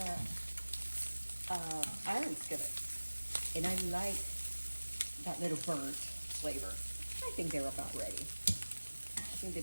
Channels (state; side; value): inverted; both; correlation -1.00